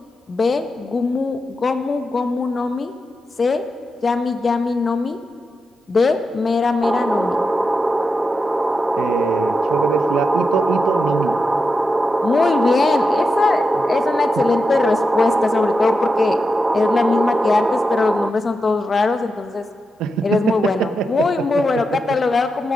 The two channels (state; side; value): normal; both; correlation 0.88